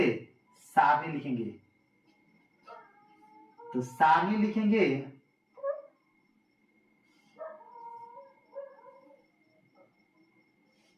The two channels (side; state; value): both; identical; correlation 1.00